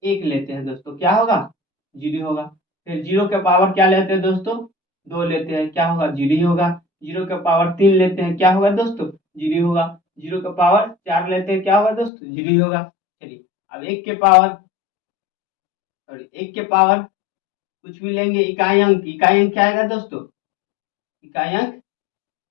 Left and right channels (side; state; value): right; drops out; at 12.1 s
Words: एक लेते हैं दोस्तों, क्या होगा? जीरो होगा। फिर जीरो के पावर क्या लेते हैं दोस्तों? 2 लेते हैं, क्या होगा? जीरो ही होगा। जीरो के पावर 3 लेते हैं, क्या होगा दोस्तों? जीरो होगा। जीरो के पावर 4 लेते हैं, क्या होगा दोस्तों? जीरो ही होगा। चलिए, अब एक के पावर कुछ भी लेंगे, इकाई अंक क्या आएगा दोस्तों? इकाई अंक